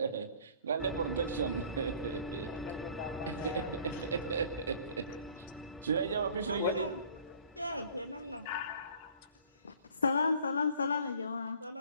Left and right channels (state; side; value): inverted; both; correlation -0.51